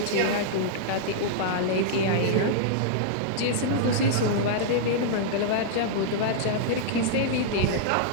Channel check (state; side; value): different; both; correlation -0.01